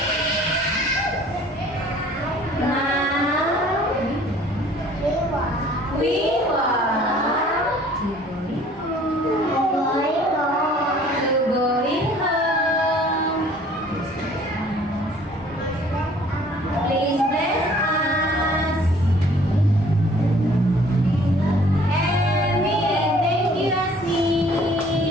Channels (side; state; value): both; normal; correlation 0.54